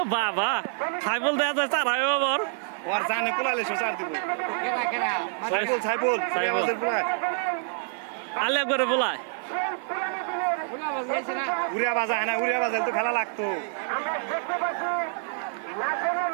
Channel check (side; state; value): left; silent; digital silence